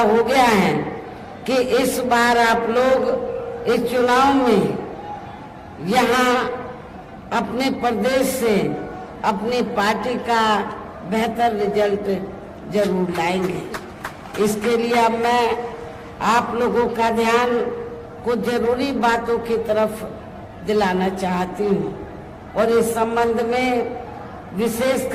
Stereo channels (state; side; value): identical; both; correlation 1.00